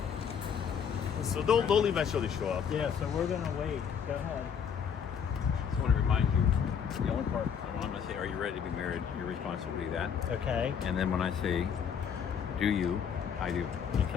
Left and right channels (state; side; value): quieter; right; 7.4 dB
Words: So they'll eventually show up. Yeah, so we're gonna wait. Go ahead. I just want to remind you, the only part I'm going to say, are you ready to be married? Your responsibility to that. Okay. And then when I say, do you, I do. Okay.